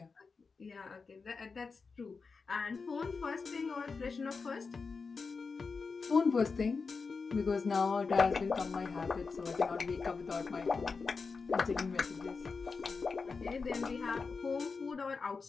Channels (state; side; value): quieter; right; 4.7 dB